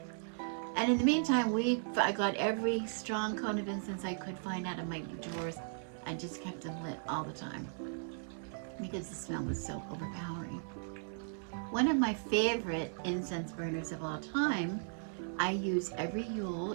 And in the meantime, I got every strong cone of incense I could find out of my drawers and just kept them lit all the time because the smell was so overpowering. One of my favorite incense burners of all time, I use every Yule.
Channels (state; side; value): silent; left; 53 dB below the other